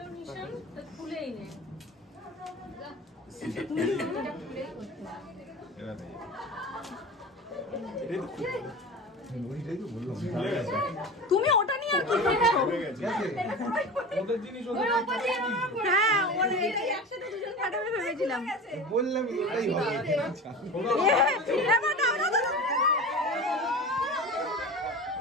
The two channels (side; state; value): both; normal; correlation 0.31